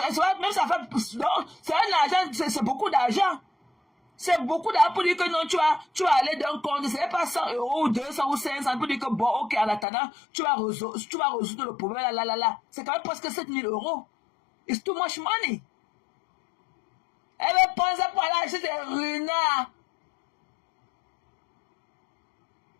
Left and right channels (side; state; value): right; drops out; at 9.9 s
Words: Même ça fait. C'est un argent, c'est beaucoup d'argent. C'est beaucoup d'argent pour dire que non, tu vas aller d'un compte. C'est pas 100 € ou 200 ou 500 pour dire que bon, ok, en attendant, tu vas résoudre le problème. Là. C'est quand même presque 7 000 €. It's too much money. Elle va prendre ça pour aller acheter des renards.